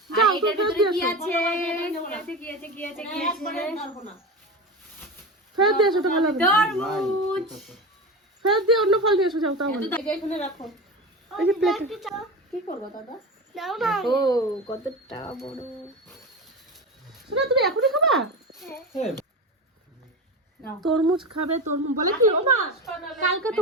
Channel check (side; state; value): both; normal; correlation 0.24